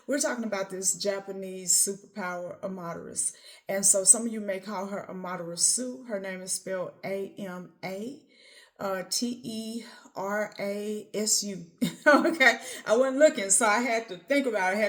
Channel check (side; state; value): both; identical; correlation 1.00